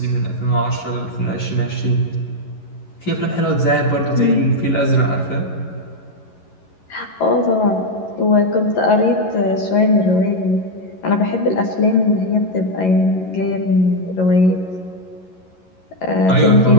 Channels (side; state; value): right; late; 11 ms